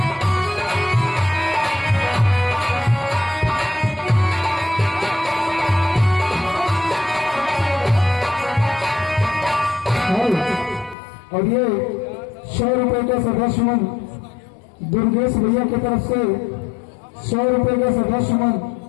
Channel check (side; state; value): right; drops out; at 11.0 s